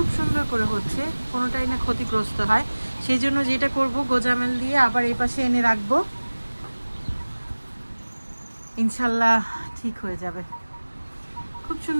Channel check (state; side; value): inverted; both; correlation -1.00